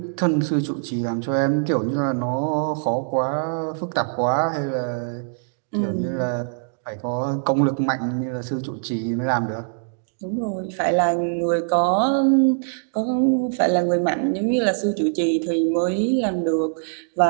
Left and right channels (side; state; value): left; silent; digital silence